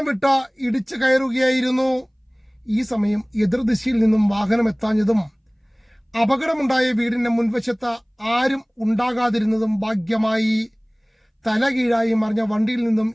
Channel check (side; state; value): both; identical; correlation 1.00